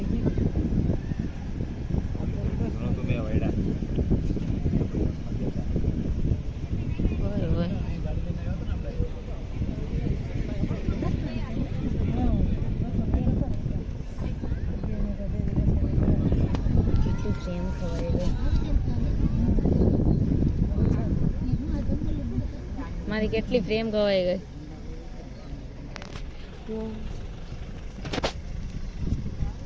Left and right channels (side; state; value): both; identical; correlation 1.00